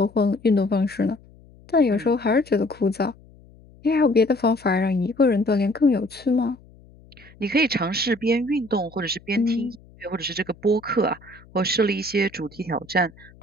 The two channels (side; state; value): left; noise; hum, 25 dB below the sound